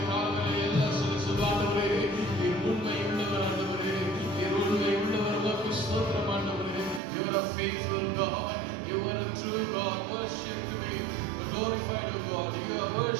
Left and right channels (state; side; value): drops out; left; at 7.0 s